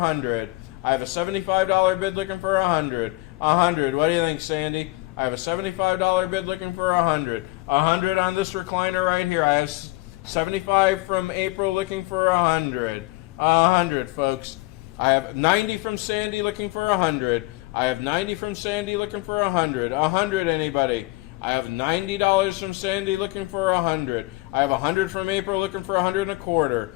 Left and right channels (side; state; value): right; quieter; 21.9 dB